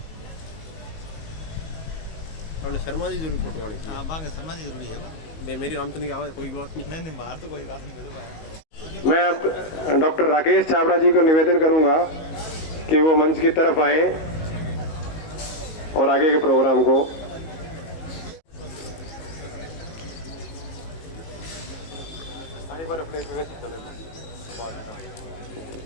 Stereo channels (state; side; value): late; right; 18 ms